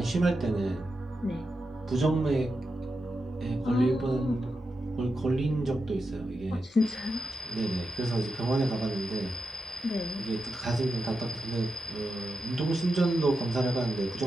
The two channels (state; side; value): normal; both; correlation 0.88